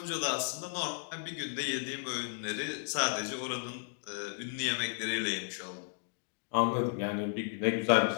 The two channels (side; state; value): right; silent; 55 dB below the other